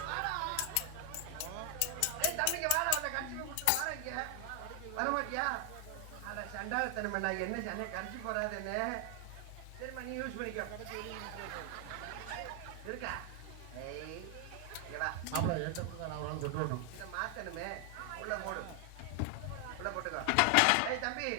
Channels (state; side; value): different; both; correlation 0.00